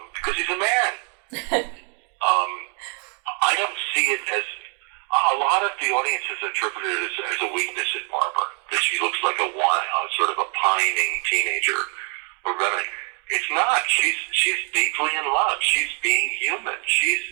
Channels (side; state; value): left; quieter; 38.1 dB